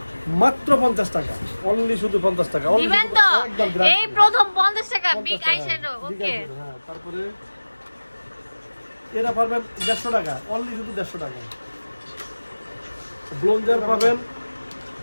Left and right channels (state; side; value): inverted; both; correlation -1.00